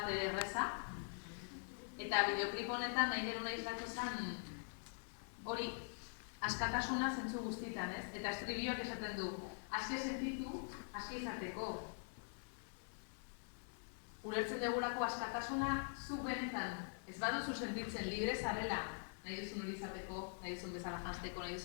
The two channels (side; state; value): right; silent; digital silence